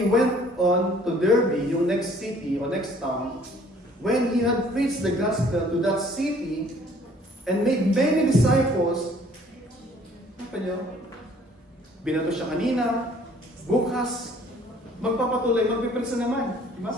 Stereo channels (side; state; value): both; normal; correlation 0.57